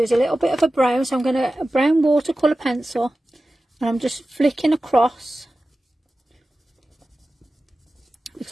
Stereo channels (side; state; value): both; normal; correlation 0.95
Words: a little bit of a brown, so I'm going to, a brown watercolour pencil, and I'm just flicking across,